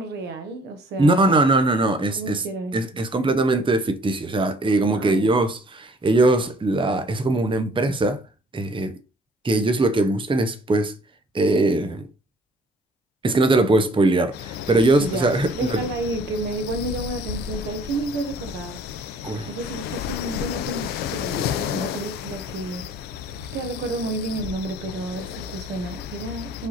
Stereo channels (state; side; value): normal; both; correlation 0.57